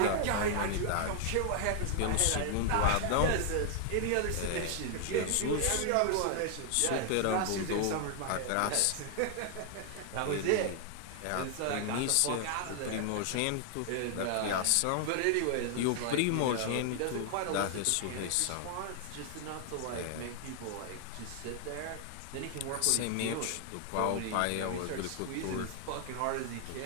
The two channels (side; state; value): both; different; correlation 0.00